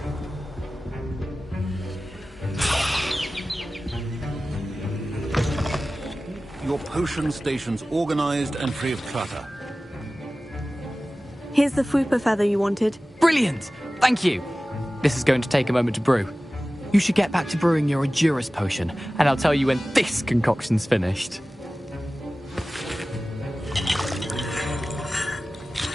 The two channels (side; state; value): both; normal; correlation 0.96